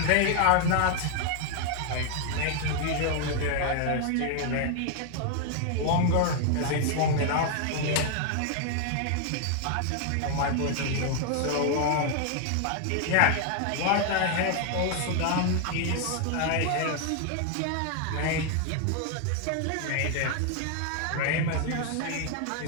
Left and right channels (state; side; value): different; both; correlation 0.00